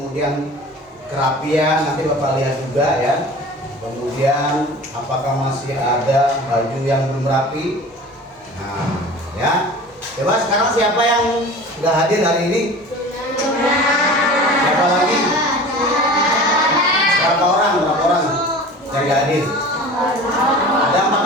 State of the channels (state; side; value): normal; both; correlation 0.39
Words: kerapian, nanti Bapak lihat juga ya. Kemudian apakah masih ada baju yang belum rapi. Nah ya, coba sekarang siapa yang nggak hadir hari ini? Siapa lagi? Berapa orang yang nggak hadir? Ada